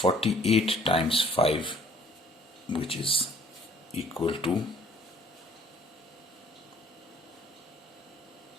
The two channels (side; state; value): both; normal; correlation 0.58